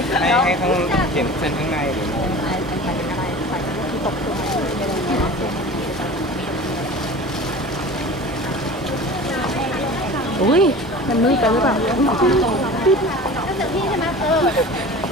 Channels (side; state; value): both; normal; correlation 0.38